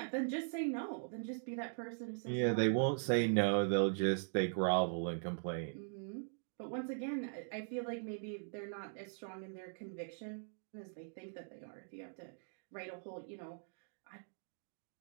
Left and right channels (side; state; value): left; silent; digital silence